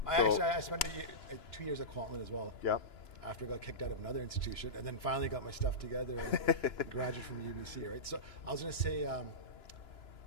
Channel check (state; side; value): late; right; 2.9 ms